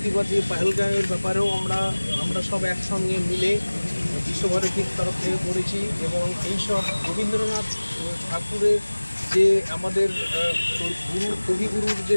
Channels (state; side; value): inverted; both; correlation -1.00